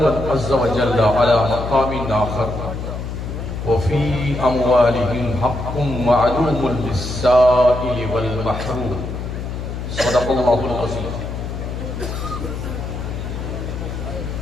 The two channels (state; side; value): noise; left; hum, 6 dB below the sound